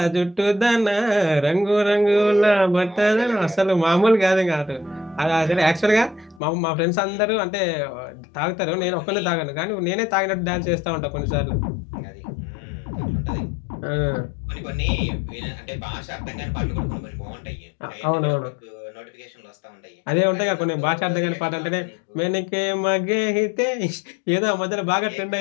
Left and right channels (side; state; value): right; drops out; at 6.4 s